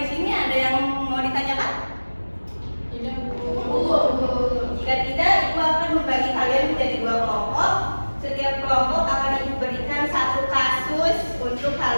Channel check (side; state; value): both; inverted; correlation -1.00